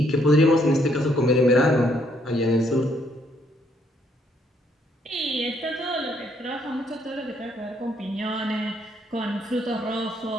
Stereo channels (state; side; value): normal; both; correlation 0.70